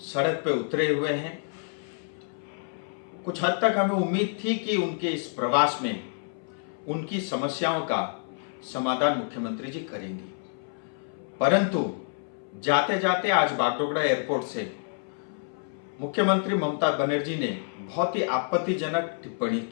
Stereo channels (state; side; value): silent; right; 59 dB below the other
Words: सड़क पे उतरे हुए हैं, कुछ हद तक हमें उम्मीद थी कि उनके इस प्रवास में उनकी समस्याओं का समाधान मुख्यमंत्री जी करेंगे। परंतु जाते जाते आज बागडोगरा एयरपोर्ट से मुख्यमंत्री ममता बनर्जी ने बहुत ही आपत्तिजनक टिप्पणी